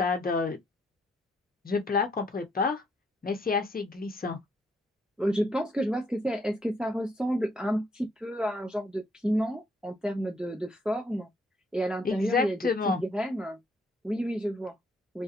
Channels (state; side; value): normal; both; correlation 0.70